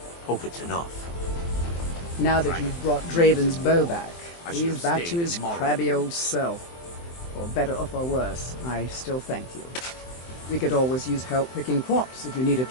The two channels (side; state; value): right; late; 23 ms